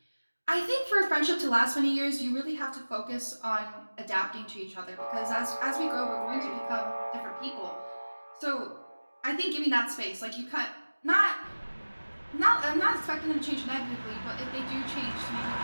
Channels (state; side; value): inverted; both; correlation -1.00